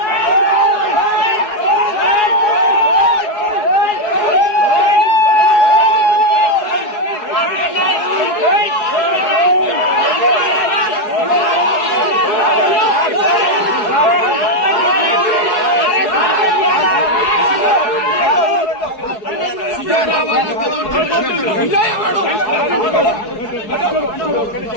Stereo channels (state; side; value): late; right; 4.7 ms